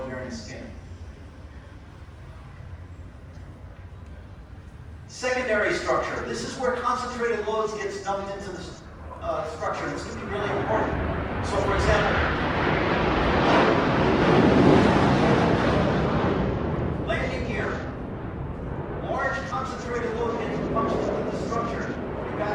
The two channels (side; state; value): both; identical; correlation 1.00